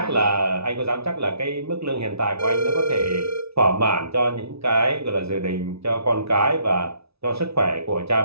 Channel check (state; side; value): late; left; 0.78 ms